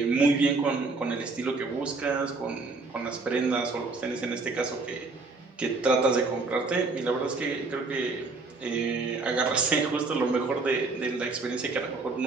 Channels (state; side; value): quieter; left; 3.8 dB